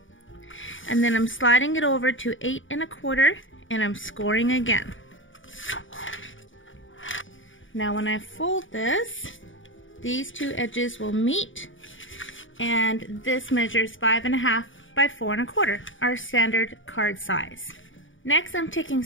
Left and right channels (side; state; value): right; late; 0.57 ms